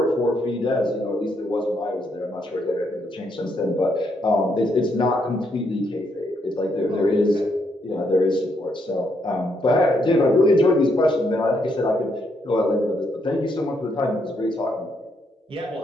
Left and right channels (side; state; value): both; normal; correlation 0.76